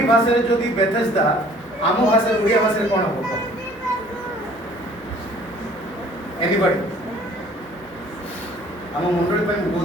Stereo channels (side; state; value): both; normal; correlation 0.54